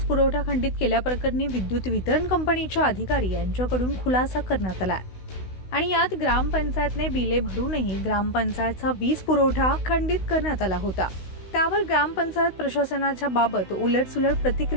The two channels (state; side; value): late; right; 16 ms